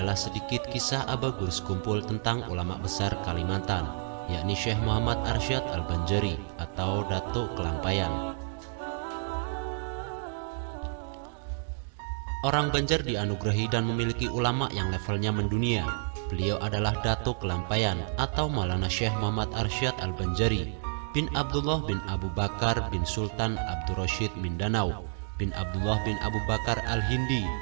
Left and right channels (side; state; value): left; silent; digital silence